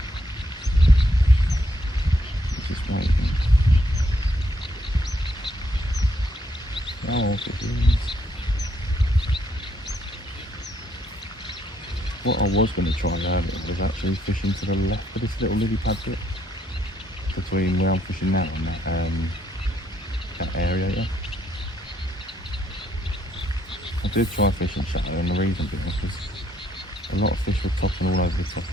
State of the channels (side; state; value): both; normal; correlation 0.72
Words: Just waiting. Oh, if it is. What I was going to try earlier was actually fishing to the left of this little lily pad bit between where I'm fishing now and that area here. I did try fishing shallow, and the reason being is a lot of fish were topping all over the top